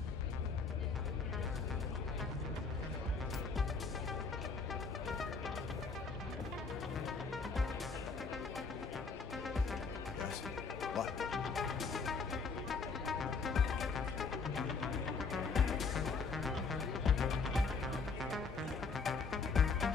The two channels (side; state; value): right; quieter; 4.7 dB